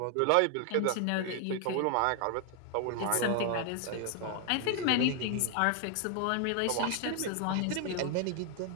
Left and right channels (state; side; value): different; both; correlation 0.00